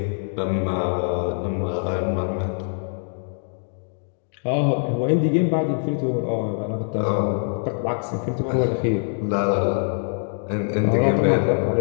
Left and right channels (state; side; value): silent; right; 58 dB below the other